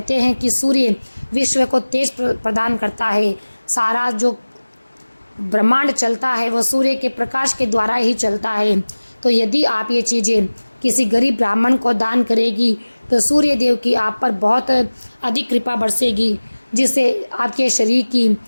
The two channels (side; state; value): both; inverted; correlation -1.00